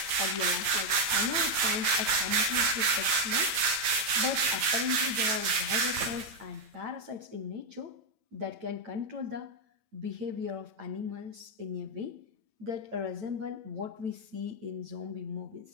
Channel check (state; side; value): late; left; 9.0 ms